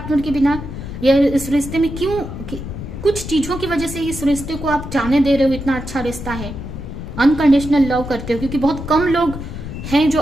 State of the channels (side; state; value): left; noise; rumble, 9 dB below the sound